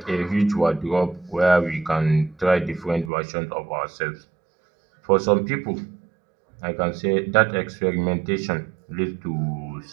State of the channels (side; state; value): left; drops out; at 3.1 s